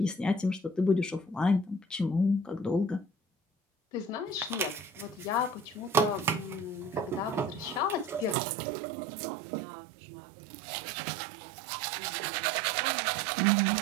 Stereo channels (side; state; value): left; drops out; at 8.3 s